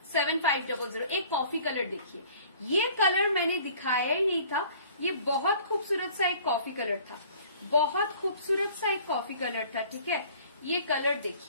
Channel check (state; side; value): inverted; both; correlation -0.52